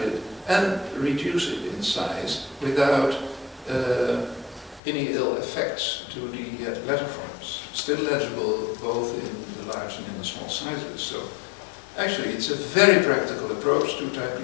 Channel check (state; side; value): drops out; right; at 4.8 s